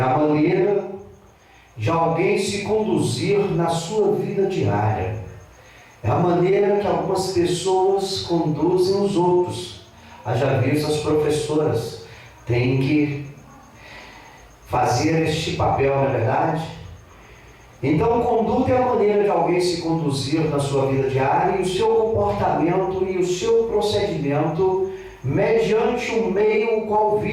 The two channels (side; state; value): both; identical; correlation 1.00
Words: maneira de alguém se conduzir na sua vida diária. É a maneira que algumas pessoas conduzem os outros. Haja visto as professoras têm que fazer este papel, não é verdade? Então, conduta é a maneira de alguém se conduzir na sua vida diária e o seu comportamento e o seu procedimento mediante o meio o qual